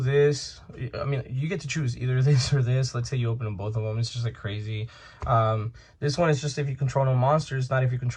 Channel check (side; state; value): both; identical; correlation 1.00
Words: I mean, you get to choose either this or this. Let's say you open them both of them, it's just like crazy. This one is just if you control no monsters, not if you